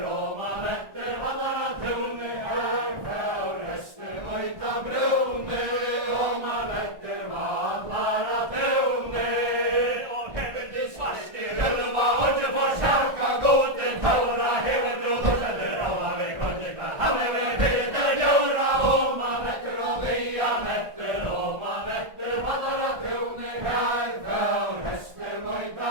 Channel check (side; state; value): left; late; 1.4 ms